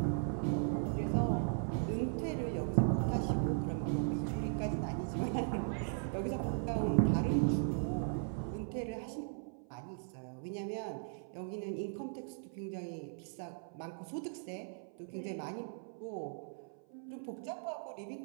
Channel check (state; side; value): silent; left; 52 dB below the other